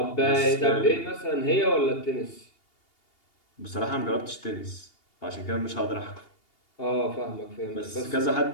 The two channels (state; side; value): late; right; 2.8 ms